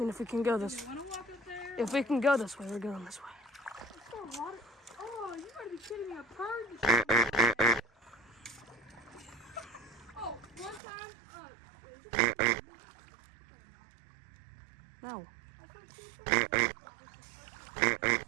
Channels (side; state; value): left; drops out; at 10.8 s